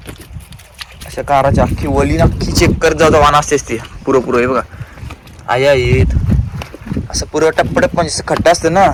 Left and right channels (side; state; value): both; identical; correlation 1.00